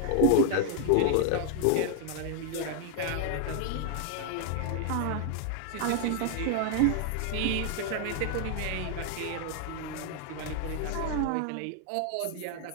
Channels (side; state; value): both; different; correlation 0.00